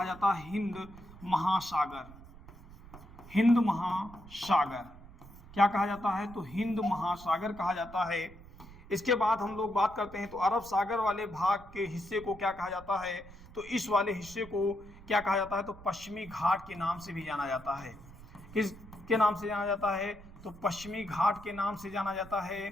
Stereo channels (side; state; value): right; noise; rumble, 19 dB below the sound